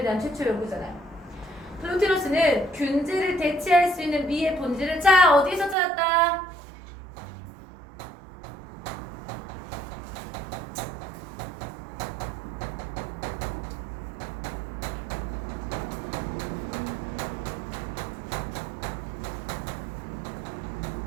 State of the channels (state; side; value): drops out; left; at 5.8 s